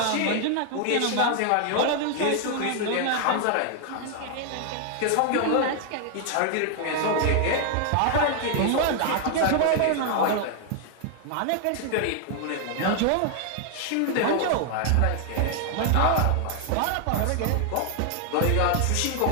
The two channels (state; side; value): different; both; correlation 0.00